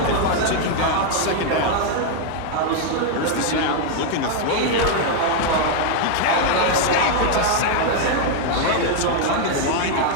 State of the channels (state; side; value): different; both; correlation 0.00